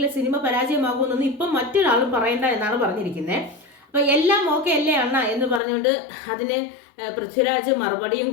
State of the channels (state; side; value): drops out; right; at 5.6 s